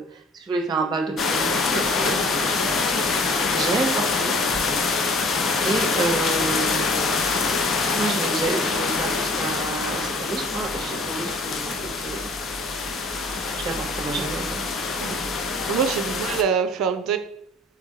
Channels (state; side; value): normal; both; correlation 0.50